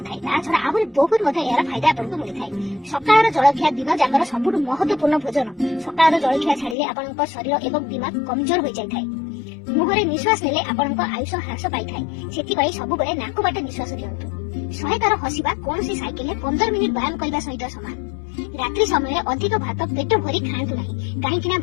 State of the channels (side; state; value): right; drops out; at 6.8 s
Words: थाय। ता छडा आहुरी बहुत मते यार फायदा आपनक मिलि थाय। सकाळर जलखिया दिन जाकर सबुठ महत्वपूर्ण भोजन। सकाळर जलखिया छाडिले आपनक शरीर एवं दिमाग कमजोर हो जाय थाय। मुहरे निश्वास नेले आपनक आयुष ह्रास पाई थाय। सेति पई सब बेले नाक बाटे निश्वास लियंतु। 100 तार हसिबा कोनोसी साइकेल 15 मिनिट व्यायाम करबा सहित समान। रात्रि समय अधिक भात पेट भरी खाआंतु नाही, काहेकि